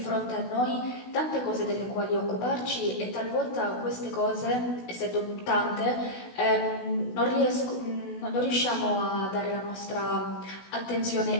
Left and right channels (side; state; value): right; late; 16 ms